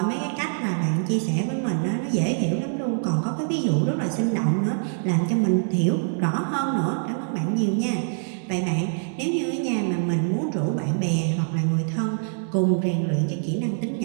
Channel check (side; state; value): left; silent; 62 dB below the other